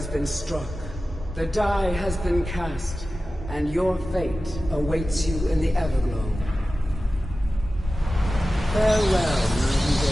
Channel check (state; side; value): normal; both; correlation 0.95